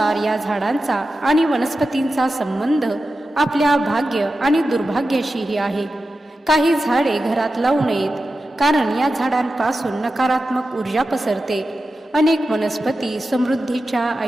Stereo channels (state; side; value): normal; both; correlation 0.92